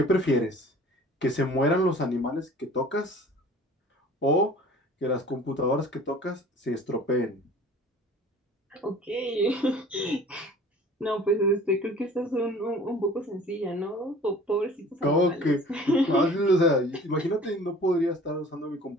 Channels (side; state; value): both; normal; correlation 0.47